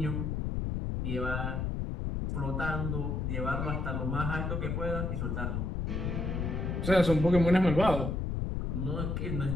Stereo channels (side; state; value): left; noise; rumble, 1 dB below the sound